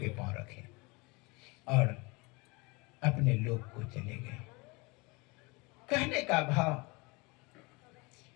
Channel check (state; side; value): quieter; right; 26.7 dB